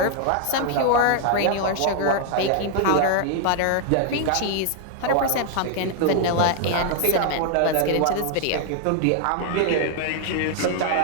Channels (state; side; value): different; both; correlation 0.00